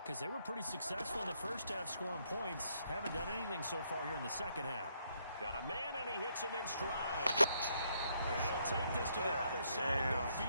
they were pretty successful in the first half scoring points. Haven't done anything so far here in the second half. Got a man, and he hits him in stride. And he'll take this to the other side of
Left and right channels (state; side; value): inverted; both; correlation -0.73